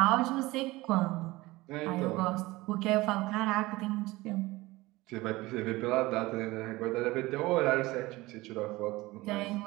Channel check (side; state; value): left; quieter; 20.2 dB